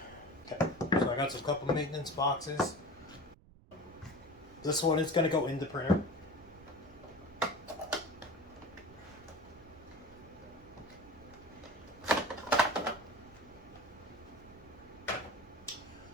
Okay, so I got a couple of maintenance boxes. This one is going to go in the printer.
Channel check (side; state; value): right; noise; rumble, 23 dB below the sound